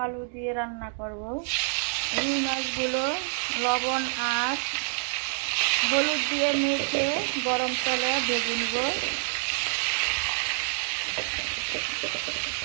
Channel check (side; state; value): left; silent; digital silence